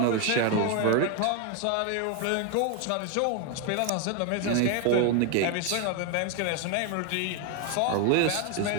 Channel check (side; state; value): both; different; correlation 0.01